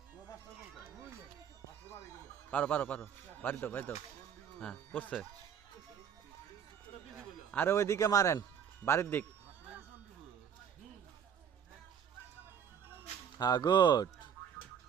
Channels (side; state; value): left; quieter; 8.1 dB